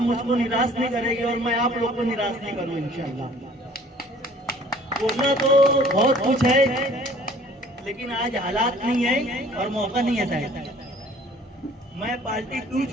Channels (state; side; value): normal; both; correlation 0.53